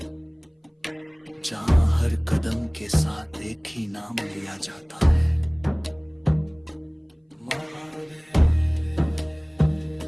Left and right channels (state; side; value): identical; both; correlation 1.00